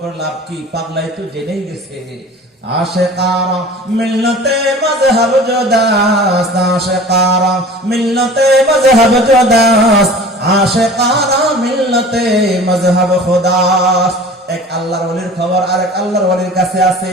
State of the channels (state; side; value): normal; both; correlation 0.42